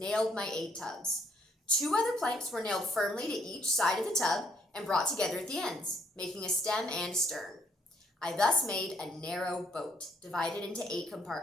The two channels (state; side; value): normal; both; correlation 0.68